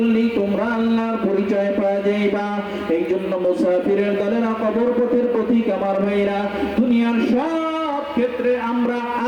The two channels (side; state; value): both; identical; correlation 1.00